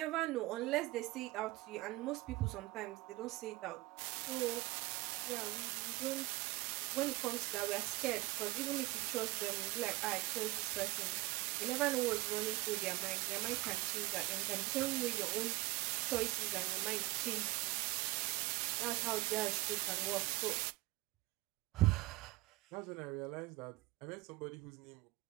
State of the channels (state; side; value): quieter; left; 20.6 dB